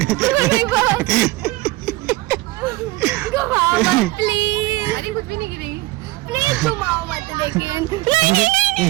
प्लीज। अरे कुछ भी नहीं गिरेगी प्लीज घुमाओ मत लेकिन।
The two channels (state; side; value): quieter; left; 19.6 dB